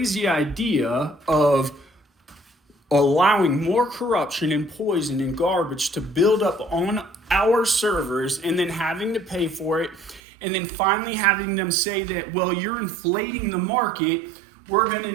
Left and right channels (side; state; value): left; drops out; at 10.2 s